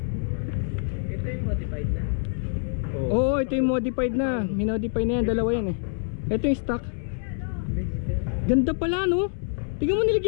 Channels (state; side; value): silent; right; 61 dB below the other